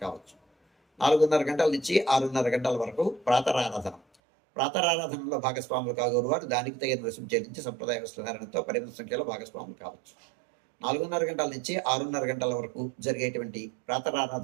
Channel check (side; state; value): left; drops out; at 4.0 s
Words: కావచ్చు. 4:30 గంటల నుంచి 6:30 గంటల వరకు ప్రాతరారాధన. ప్రాతరారాధనలో భాగస్వాములు కాగోరు వారు దానికి తగిన రుసుము చెల్లించి సంప్రదాయ వస్త్రధారణతో పరిమిత సంఖ్యలో భాగస్వాములు కావచ్చు. 4:30 గంటల నుంచి 6:30 గంటల వరకు జరిగేటువంటి